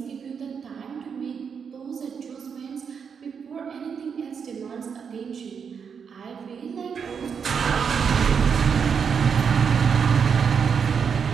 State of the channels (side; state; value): left; quieter; 6.6 dB